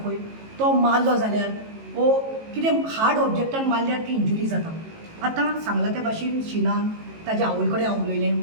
पळय तो मारलो जाल्यार ओ कितें हार्ड ऑब्जेक्टान मारल्यार ती इंजुरी जाता. आतां सांगला त्या भाशेन शिनान ताज्या आवय कडेन हांव उलयलें,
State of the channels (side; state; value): left; late; 18 ms